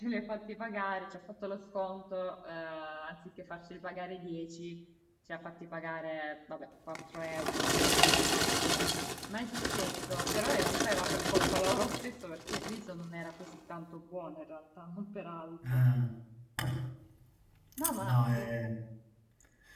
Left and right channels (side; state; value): both; identical; correlation 1.00